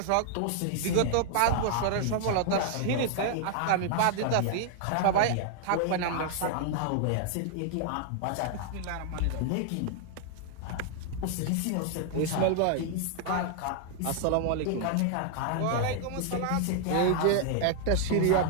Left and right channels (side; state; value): both; different; correlation 0.00